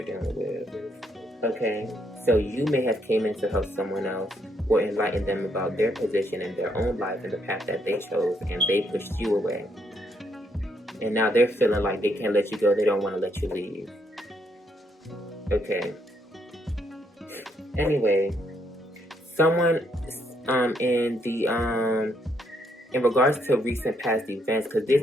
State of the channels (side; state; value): both; normal; correlation 0.74